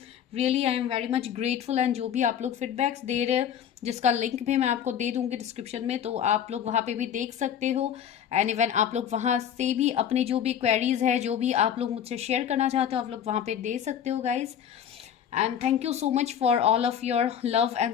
really I am very much grateful. And जो भी आप लोग फीडबैक्स दे रहे हैं, जिसका लिंक भी मैं आपको दे दूंगी डिस्क्रिप्शन में, तो आप लोग वहाँ पे भी देख सकते हो। एंड इवन आप लोग वहाँ से भी अपनी जो भी क्वेरीज है, जो भी आप लोग मुझसे शेयर करना चाहते हो, आप लोग वहाँ पे दे सकते हो guys. And thank you so much for all of your love and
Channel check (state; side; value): quieter; right; 9.1 dB